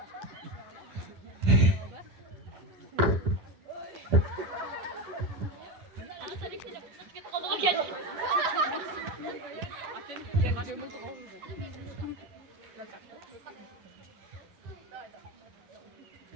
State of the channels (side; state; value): left; late; 10 ms